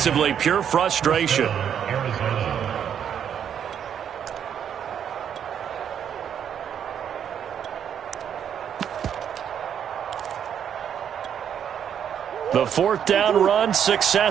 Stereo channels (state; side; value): quieter; left; 8.7 dB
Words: pure frustration. The fourth down run